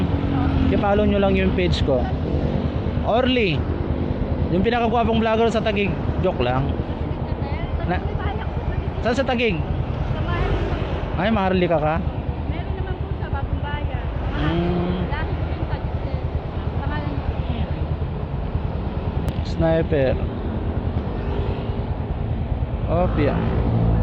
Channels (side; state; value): both; identical; correlation 1.00